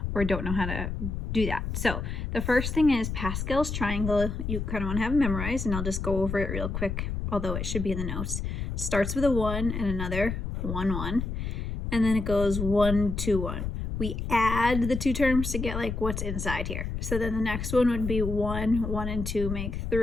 or don't know how to do that. So the first thing is Pascal's triangle. You kind of want to have it memorized, and I'll just go over it real quick, although it should be in the notes. It starts with a 1 and another 1, 1, and then it goes 1, 2, 1. We add the two terms to get like what's inside here. So then the next one would be 1, 1 and 2 make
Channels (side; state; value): left; noise; rumble, 4 dB below the sound